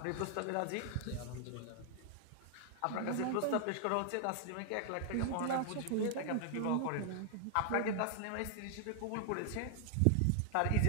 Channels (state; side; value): different; both; correlation 0.00